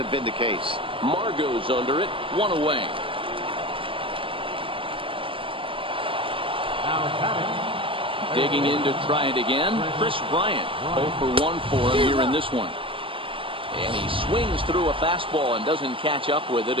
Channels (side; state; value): left; late; 0.25 ms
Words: been the case. Margot's under it, 1 away. Digging in to try it again, Chris Bryant. 0 for 1 for him here in this one. And he swings through a fastball and doesn't catch up with it.